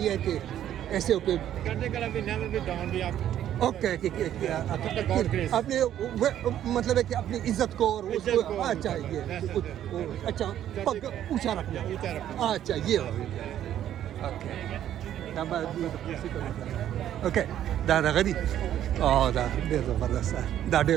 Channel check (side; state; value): left; quieter; 11.2 dB